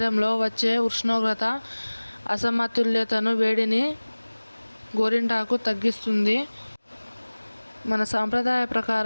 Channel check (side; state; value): both; inverted; correlation -1.00